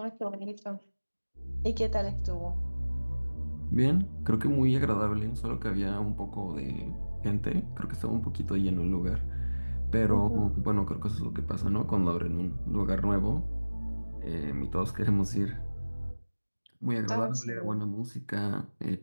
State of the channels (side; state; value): both; inverted; correlation -1.00